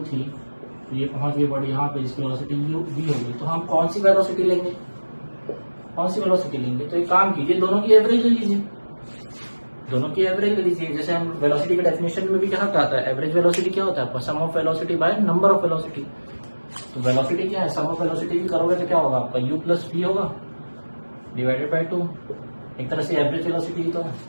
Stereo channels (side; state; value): both; inverted; correlation -1.00